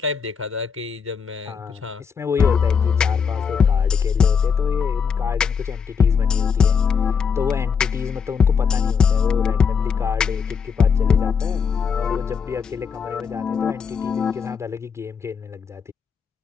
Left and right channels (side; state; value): right; quieter; 6.4 dB